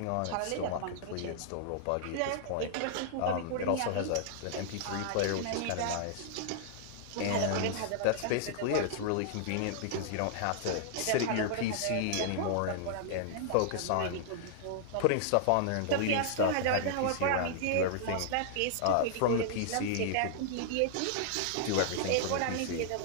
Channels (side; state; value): both; different; correlation -0.01